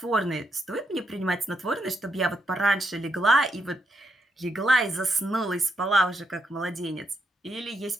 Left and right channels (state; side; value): normal; both; correlation 0.80